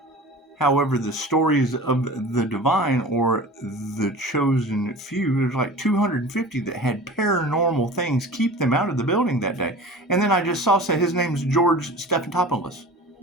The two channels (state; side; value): normal; both; correlation 0.38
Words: However, the stories of the divine or the chosen few, there's like 250 that had paranormal things keep them out of the building that day. And then I just saw say his name's George Stephanopoulos.